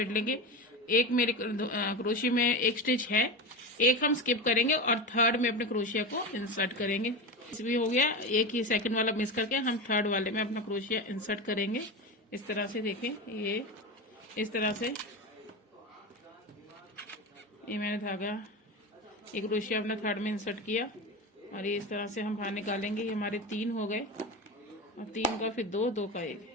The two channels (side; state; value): both; normal; correlation 0.22